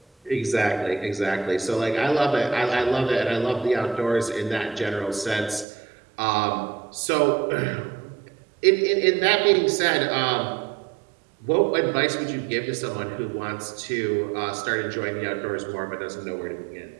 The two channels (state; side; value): drops out; left; at 5.7 s